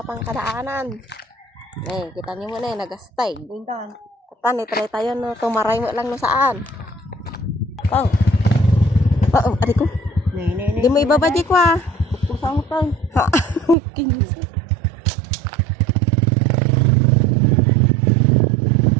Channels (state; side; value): drops out; left; at 13.8 s